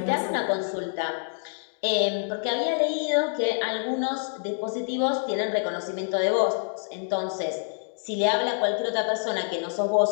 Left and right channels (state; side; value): silent; right; 60 dB below the other